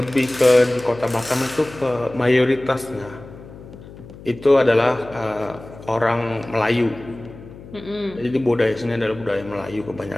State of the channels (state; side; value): noise; left; hum, 17 dB below the sound